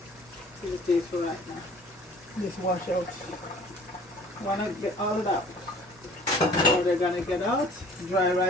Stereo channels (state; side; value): normal; both; correlation 0.51